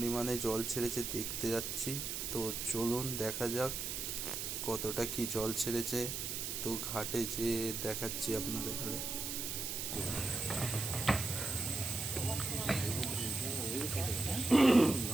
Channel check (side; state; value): right; noise; hiss, 3 dB below the sound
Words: জল ছেড়েছে, দেখতে যাচ্ছি। তো চলুন দেখা যাক কতটা কি জল ছেড়েছে। তো ঘাটে যেয়ে দেখাচ্ছি আপনাদের ঘরে।